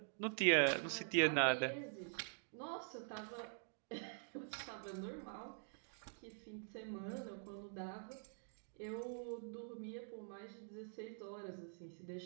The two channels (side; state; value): left; silent; digital silence